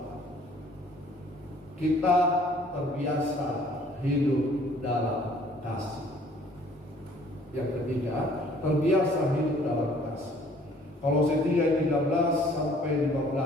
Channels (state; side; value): normal; both; correlation 0.57